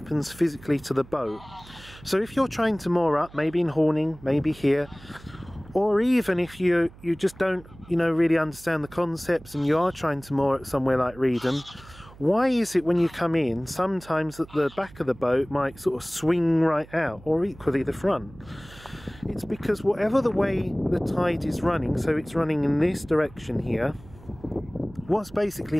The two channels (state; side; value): noise; right; hum, 21 dB below the sound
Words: physically to the boat. So if you're trying to moor up, maybe in Horning, maybe here, or even if you just don't, you know, really understand the concepts and you are trying to moor at somewhere like Reedham, why is it when you come in, sometimes that the back of the boat might sort of swing right out, or equally the front? It's because whatever the way the tide is running, so it's running in this direction here, what's